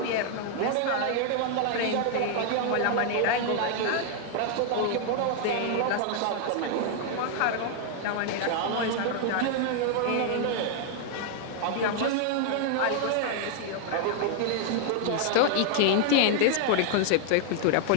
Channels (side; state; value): both; different; correlation 0.00